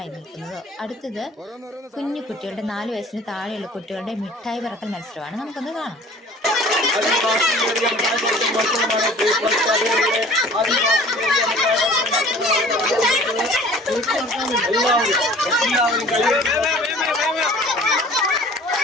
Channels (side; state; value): both; normal; correlation 0.48